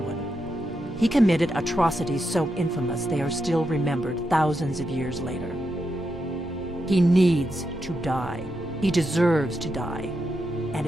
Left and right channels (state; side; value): normal; both; correlation 0.85